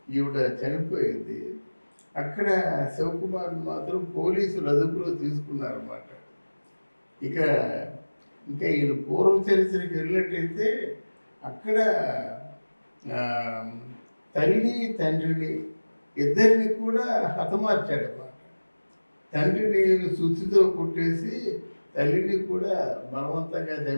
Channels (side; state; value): both; inverted; correlation -1.00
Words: ఈవిడ చనిపోయింది. అక్కడ శివకుమార్ మాత్రం పోలీసులు అదుపులో తీసుకున్నారన్నమాట. ఇంకా ఈయన పూర్వ చరిత్రకి వెళ్ళినట్టయితే అక్కడ తల్లి తండ్రిని ఇద్దరిని కూడా హతమార్చాడన్నమాట. తండ్రిని సుత్తితో కుట్టేసి తల్లిని కూడా బలవంతంగా